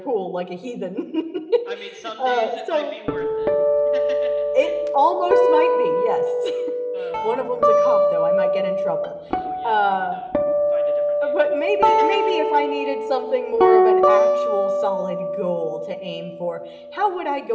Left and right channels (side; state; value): both; identical; correlation 1.00